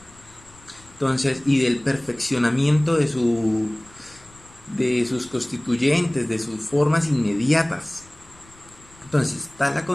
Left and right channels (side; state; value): left; noise; rumble, 26 dB below the sound